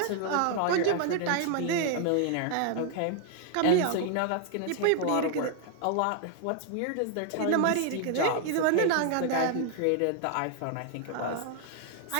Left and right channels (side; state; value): both; different; correlation 0.00